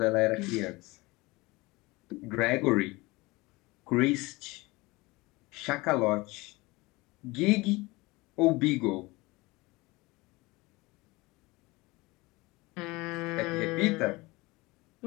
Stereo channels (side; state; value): right; quieter; 22.6 dB